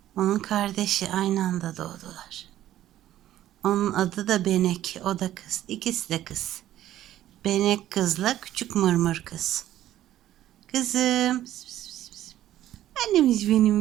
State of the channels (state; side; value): quieter; left; 13.0 dB